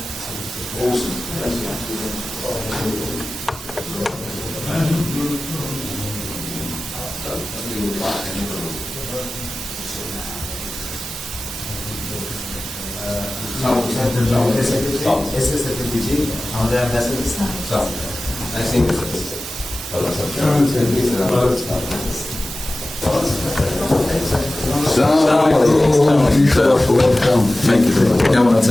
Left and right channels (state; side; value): normal; both; correlation 0.96